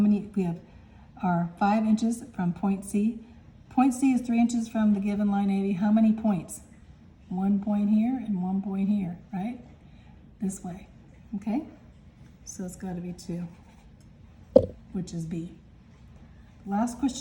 We have our 5 inches from point C. Point C is 3 inches from the given line AB. How many points? 1 point here and 1 point here, right? This way, okay? So it's got to be 2, which is B. Last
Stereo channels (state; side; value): identical; both; correlation 1.00